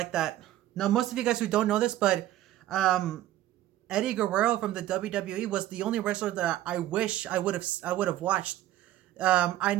that. Now, most of you guys who don't know this, but Eddie Guerrero from the WWE was the only wrestler that I wish I would have watched. I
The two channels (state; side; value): quieter; left; 13.8 dB